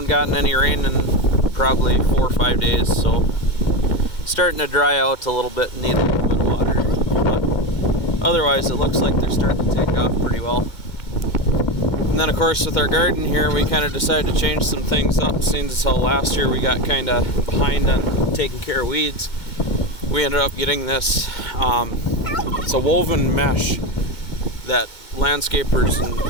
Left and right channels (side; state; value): right; late; 2.2 ms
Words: gotten any rain in probably 4 or 5 days, so starting to dry out a little bit and need a little bit of water. But otherwise, it looks like they're starting to take off pretty well. And then, of course, with our garden here, we kind of decided to change some things up. Seeing as how last year we got kind of behind on taking care of weeds, we ended up getting this. It's a woven mesh that landscapers